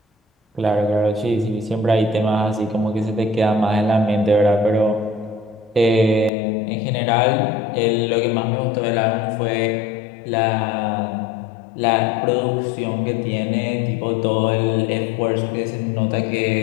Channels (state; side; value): drops out; right; at 6.3 s